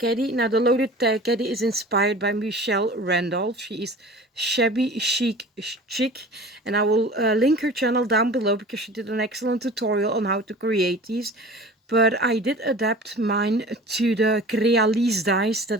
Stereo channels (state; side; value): normal; both; correlation 0.40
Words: Now the loaded tag caddy is inspired by Michelle Randolph. She is shabby chic, and I will link her channel down below because she did an excellent tutorial on how to create these. But I did adapt mine to the Crealise dies